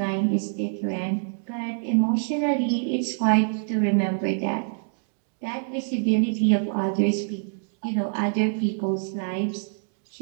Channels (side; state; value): left; silent; digital silence